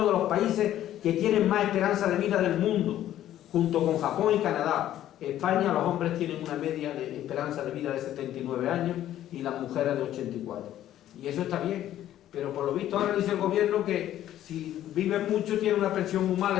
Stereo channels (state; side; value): quieter; right; 12.4 dB